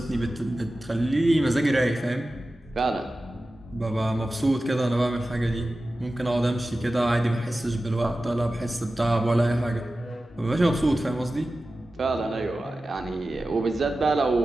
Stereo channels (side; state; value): both; normal; correlation 0.95